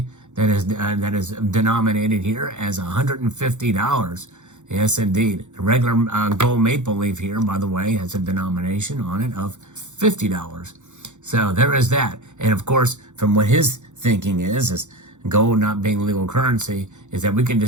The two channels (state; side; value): late; left; 0.84 ms